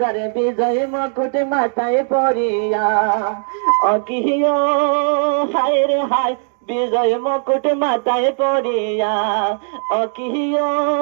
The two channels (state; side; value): silent; left; digital silence